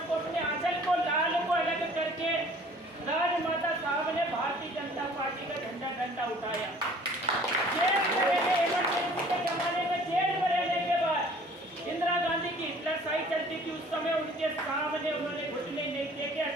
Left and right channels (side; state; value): both; normal; correlation 0.52